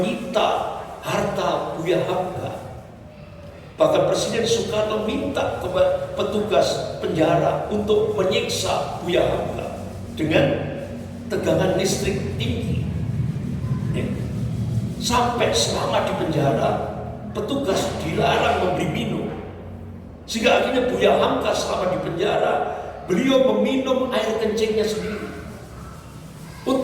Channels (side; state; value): both; identical; correlation 1.00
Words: harta Buya Hamka. Bahkan Presiden Soekarno minta kepada petugas penjara untuk menyiksa Buya Hamka dengan tegangan listrik tinggi. Sampai selama di penjara, petugas dilarang memberi minum. Sehingga akhirnya Buya Hamka selama di penjara, beliau meminum air kencingnya sendiri